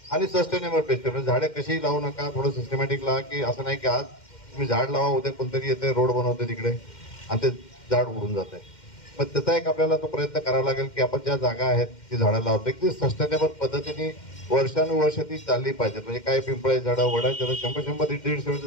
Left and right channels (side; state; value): right; late; 2.1 ms